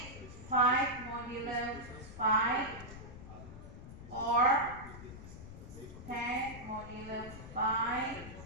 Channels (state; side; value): noise; left; rumble, 13 dB below the sound